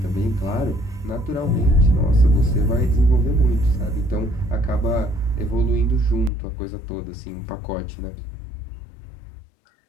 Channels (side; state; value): right; drops out; at 6.3 s